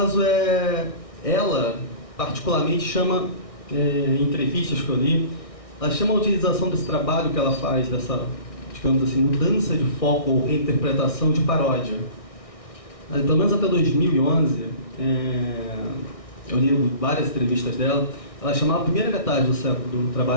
ela particularmente chama, em entrevistas que eu li, ela chama a utilização desse trabalho que ela faz, dessa, digamos assim, mudança de foco ou reinterpretação de paródia. Pelo menos até 2011, eu li várias entrevistas dela, ela chamava a primeira metade do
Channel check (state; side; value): late; right; 1.6 ms